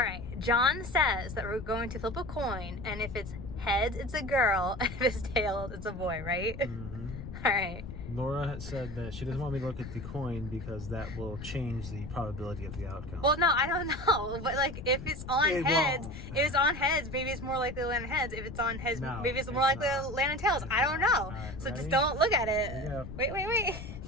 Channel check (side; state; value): left; noise; rumble, 10 dB below the sound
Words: John says that we're going to flip a coin, and if it's heads, it's a girl, and if it's tails, it's a boy, right? Mm-hmm. All right. Laura had said that she doesn't want me to look at the coin because that will change the probability of the outcome. Well, no, I don't know, but like if it's on heads, if it's on heads, maybe it's more likely to land in heads. If it's on heads, maybe it's more likely to land in tails. I don't know. Right, so ready? just don't look at it. Here you go. Wait.